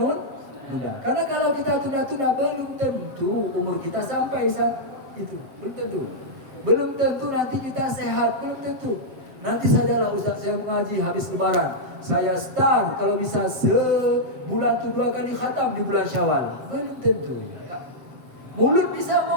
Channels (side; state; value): left; late; 7.5 ms